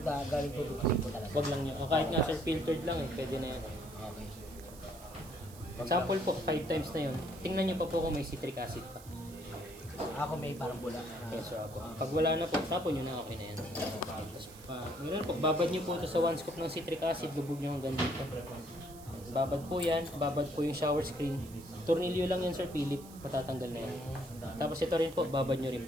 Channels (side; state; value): right; noise; hiss, 19 dB below the sound